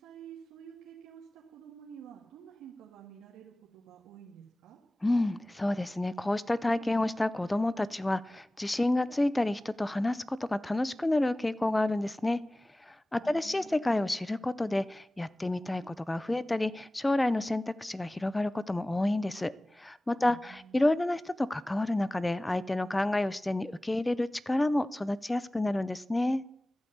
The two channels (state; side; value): normal; both; correlation 0.98